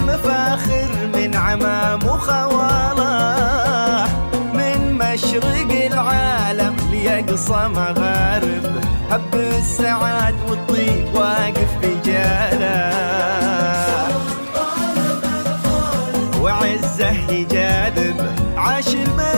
من عمام وخواله من مشرق العالم ليقصى مغارب هب السعاد والطيب واقف بجاله وعزه يجاذب عاش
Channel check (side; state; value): both; inverted; correlation -1.00